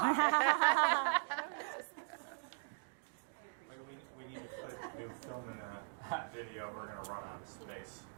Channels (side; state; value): left; silent; digital silence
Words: We need to put new film in the video. We're going to run out of space.